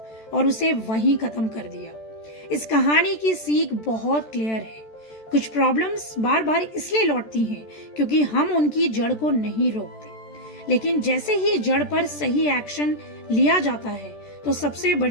और उसे वहीं खत्म कर दिया। इस कहानी की सीख बहुत क्लियर है। कुछ प्रॉब्लम्स बार बार इसलिए लौटती हैं क्योंकि हम उनकी जड़ को नहीं रोकते, लेकिन जैसे ही जड़ पर सही एक्शन लिया जाता है तो सबसे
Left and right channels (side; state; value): right; late; 14 ms